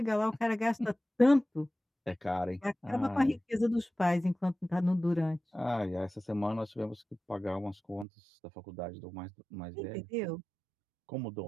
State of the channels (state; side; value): drops out; left; at 8.1 s